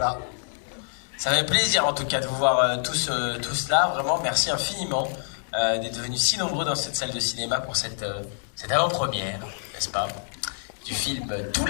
Ça fait plaisir en tout cas de vous voir tous là. Vraiment, merci infiniment d'être venus si nombreux dans cette salle de cinéma pour cette avant-première, n'est-ce pas, du film Tout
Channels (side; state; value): right; silent; digital silence